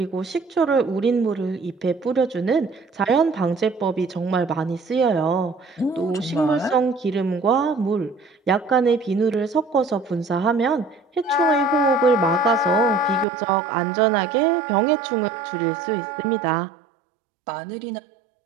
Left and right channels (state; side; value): drops out; left; at 13.2 s